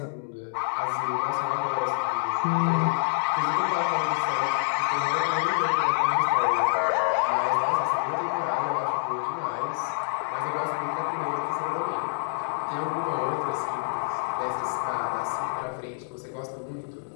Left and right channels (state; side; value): silent; right; digital silence